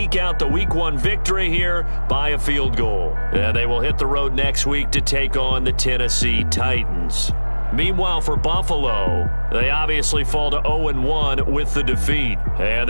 out the Week 1 victory here by a field goal. And they will hit the road next week to take on the Tennessee Titans. Meanwhile, for Buffalo, they obviously fall to 0-1 with the defeat. And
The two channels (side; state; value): both; inverted; correlation -1.00